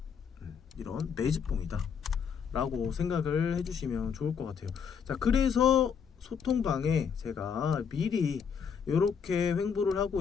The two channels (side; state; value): right; quieter; 6.8 dB